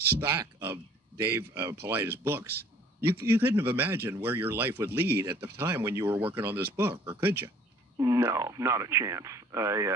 of Dave Paulides books. You couldn't have imagined where your life would lead at the time when you were working on this book, or could you? No, not a chance.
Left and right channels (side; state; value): both; normal; correlation 0.54